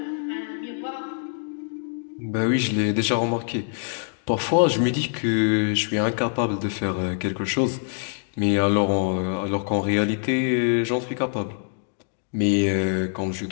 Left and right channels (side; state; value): right; silent; digital silence